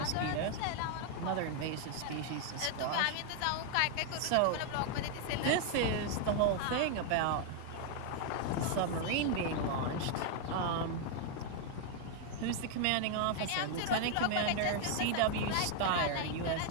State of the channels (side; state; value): both; different; correlation 0.00